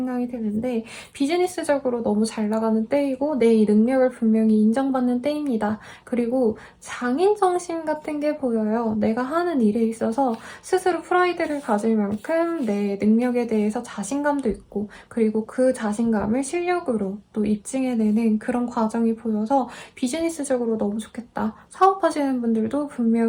드는데 비즈니스적으로 너무 잘 나가는 때이고 내 능력을 분명히 인정받는 때입니다. 그리고 장인정신 같은 게 보여요. 내가 하는 일에 있어서 스스로 스스로 프라이드를 가질 만큼 내 능력에 대해서 자신감도 있고 그리고 그 자신감을 실력으로 또 입증해내는 그런 과정이 보여서 비즈니스적으로 너무 좋겠다. 사업하시는 분들도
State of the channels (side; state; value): both; identical; correlation 1.00